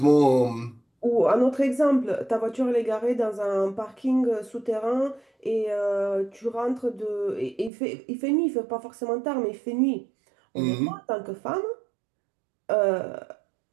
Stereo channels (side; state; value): left; drops out; at 7.7 s